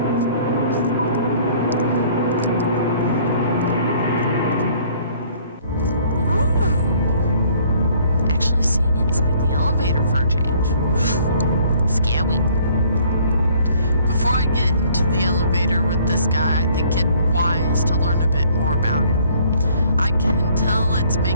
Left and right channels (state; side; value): inverted; both; correlation -0.59